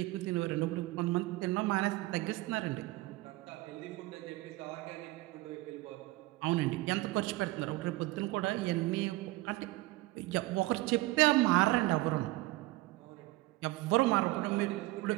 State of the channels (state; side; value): quieter; left; 19.8 dB